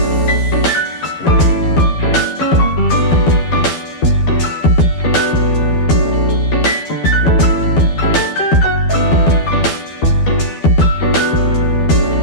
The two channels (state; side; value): late; right; 12 ms